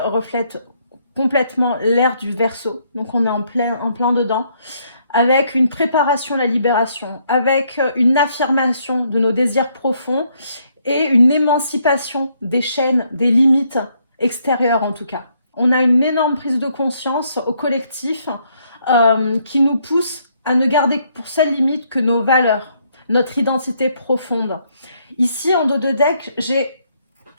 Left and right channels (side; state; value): both; inverted; correlation -0.71